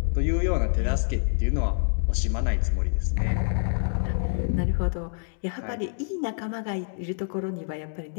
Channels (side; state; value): right; silent; 61 dB below the other